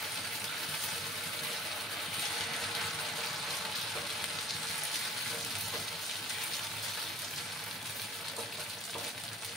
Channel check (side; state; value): both; normal; correlation 0.51